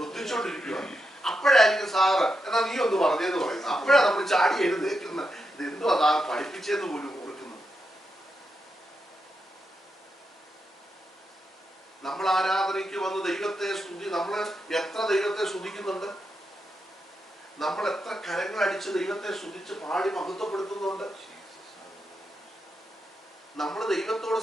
അപ്പോഴായിരിക്കും സാറ് എന്നാ നീ ഒന്ന് പറഞ്ഞേന്ന് പറയുന്നു. അപ്പോഴാണ് നമ്മൾ ചാടി എഴുന്നേക്കുന്നത്. ഇത് എന്തോ അതാ പഠിപ്പിച്ചെന്ന് പോലും ഓർക്കുന്നു. നമ്മൾ ആരാധനയ്ക്ക് വന്ന് ദൈവത്തെ സ്തുതി, നമ്മൾ എത്ര ദൈവത്തെ സ്തുതിക്കുന്നുണ്ട്, നമ്മൾ എത്ര കരങ്ങൾ അടിച്ച് ദൈവത്തെ സ്തുതിച്ച് പാടി മഹത്വപ്പെടുത്തുന്നുണ്ട്. നമ്മൾ ദൈവത്തോട്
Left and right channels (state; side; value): normal; both; correlation 0.85